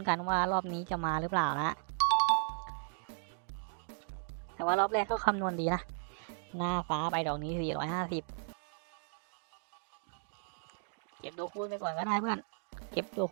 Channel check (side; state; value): left; silent; digital silence